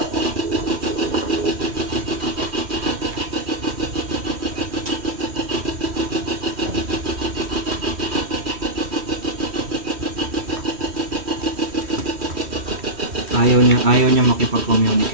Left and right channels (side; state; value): left; late; 3.1 ms